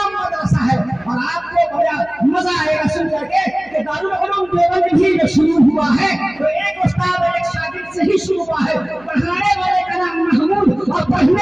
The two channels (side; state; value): right; noise; hum, 27 dB below the sound